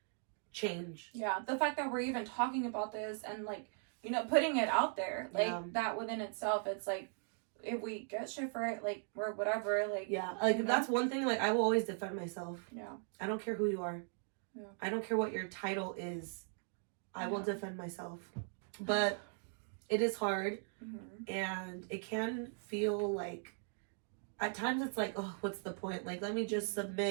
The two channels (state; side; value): silent; left; 52 dB below the other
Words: change. Yeah, the fact that we're even talking about this and like, you know, putting it out there, like that within itself, it's like, if we get shit for it, like, or whatever, like, like, that's one thing, like, I will always defend myself. I don't care who you are. I don't care what your title is. I will defend myself. But it is hard, and it can feel like, at times it's like, oh, what's the point? Like, let me just